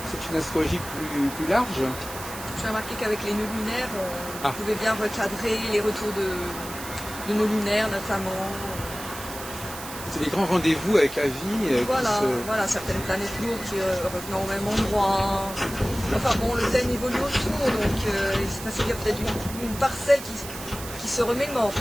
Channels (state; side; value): noise; right; hiss, 11 dB below the sound